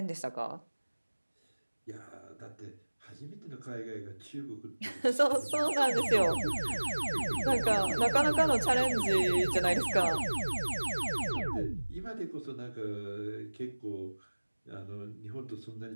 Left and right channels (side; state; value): both; inverted; correlation -1.00